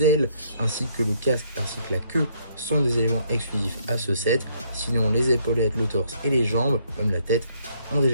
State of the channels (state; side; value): inverted; both; correlation -0.68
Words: ailes ainsi que le casque ainsi que la queue sont des éléments exclusifs à ce set. Sinon, les épaulettes, le torse et les jambes, même la tête, ont